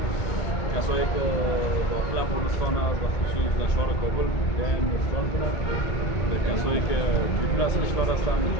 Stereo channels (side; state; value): right; late; 1.8 ms